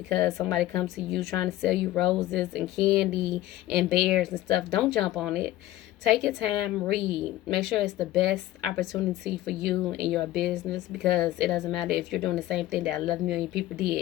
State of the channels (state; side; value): quieter; right; 15.2 dB